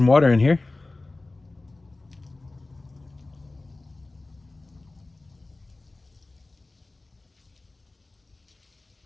water in here.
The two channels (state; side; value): quieter; right; 3.1 dB